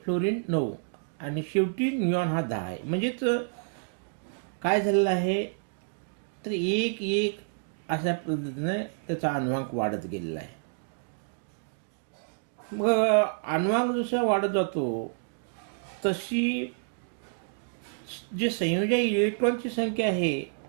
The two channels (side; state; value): left; silent; digital silence